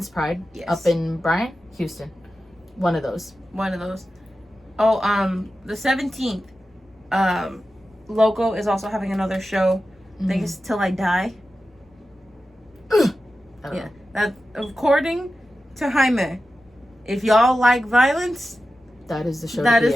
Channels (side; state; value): both; normal; correlation 0.93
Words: Pride up in Bryan, Houston. One of those. Oh, the 17th, Loko is also having another show. I think it's Till I Die. Yeah. That, according to Jaime, if y'all like violence, that is the show. That is